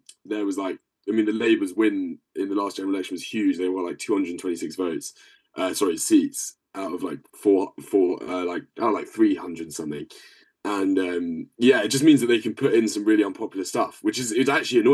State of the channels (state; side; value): identical; both; correlation 1.00